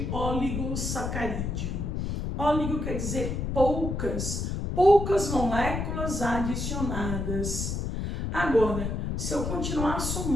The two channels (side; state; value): left; noise; rumble, 2 dB below the sound